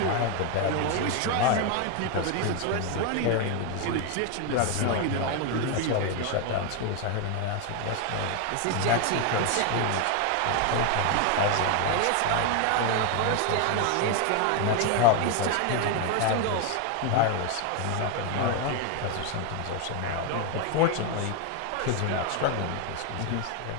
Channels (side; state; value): both; different; correlation 0.01